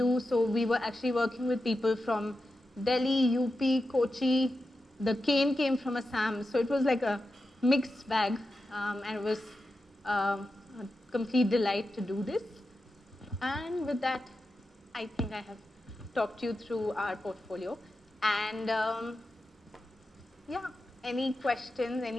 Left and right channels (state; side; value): normal; both; correlation 0.90